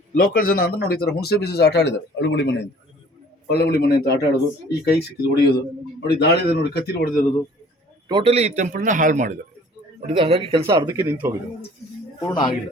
ಲೋಕಲ್ ಜನ ಅಂದ್ರೆ ನೋಡಿ, ಈ ಥರ ಹುಣಸೆ ಬೀಜ ಆಟ ಆಡಿದ್ದಾರೆ. ಅಳುಗುಳಿ ಮನೆ ಅಂತ, ಒಳ್ಳಗುಳಿ ಮನೆ ಅಂತ ಆಟ ಆಡೋದು, ಈ ಕೈ ಸಿಕ್ಕಿದ್ದು ಹೊಡೆಯೋದು ನೋಡಿ. ದಾಳಿದೆ ನೋಡಿ, ಕತ್ತಿಲಿ ಹೊಡೆದಿರೋದು. ಟೋಟಲಿ ಈ ಟೆಂಪಲ್ನ ಹಾಳು ಮಾಡಿದ್ದಾರೆ ನೋಡಿ. ಹಾಗಾಗಿ ಕೆಲಸ ಅರ್ಧಕ್ಕೆ ನಿಂತು ಹೋಗಿದೆ, ಪೂರ್ಣ ಆಗಿಲ್ಲ.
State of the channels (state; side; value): normal; both; correlation 0.52